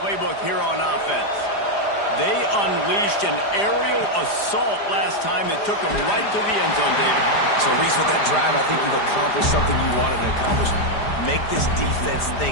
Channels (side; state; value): right; late; 4.9 ms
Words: here on offense. They unleashed an aerial assault last time that took them right to the end zone, David. So, Reese, with that drive, I think you've accomplished something you wanted to accomplish. Make this defense